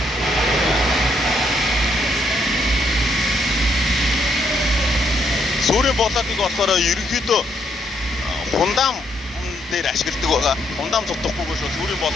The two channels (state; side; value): normal; both; correlation 0.73